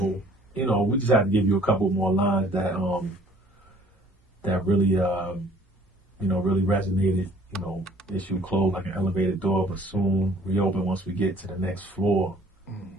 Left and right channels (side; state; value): both; normal; correlation 0.55